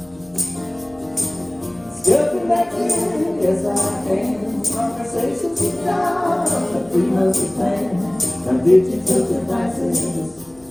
Still connected yes I am. Conversations with God on the 3 months plan. Now digital devices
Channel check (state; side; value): noise; left; hum, 30 dB below the sound